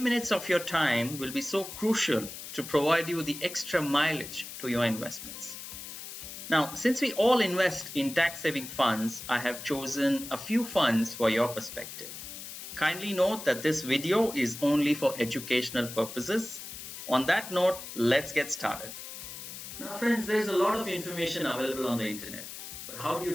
minutes of your time will be so crucial to provide you the extra mileage to your investments. Now, since we all invest in tax-saving funds, I have chosen a few funds for your perspective. Kindly note that this video is only for educational purposes. On that note, let's get started. Now friends, there's a lot of information available on the internet, but how do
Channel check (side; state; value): left; noise; hiss, 10 dB below the sound